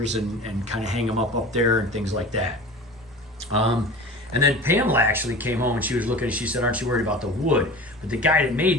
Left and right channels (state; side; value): normal; both; correlation 0.36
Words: and kind of hang them up there and things like that. And then Pamela actually came home and she was looking and she said, aren't you worried about the wood? But the guy that